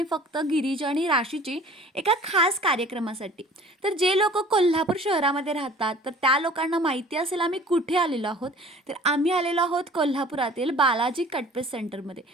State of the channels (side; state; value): both; normal; correlation 0.47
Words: फक्त गिरीजा आणि राशीची एका खास कार्यक्रमासाठी. तर जे लोक कोल्हापूर शहरामध्ये राहतात तर त्या लोकांना माहिती असेल आम्ही कुठे आलेलो आहोत. तर आम्ही आलेलो आहोत कोल्हापुरातील बालाजी कटपीस सेंटरमध्ये.